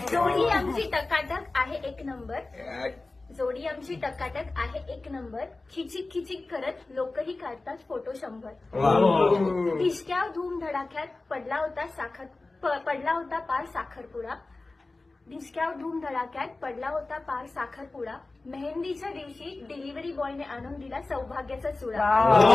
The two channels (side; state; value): right; quieter; 3.3 dB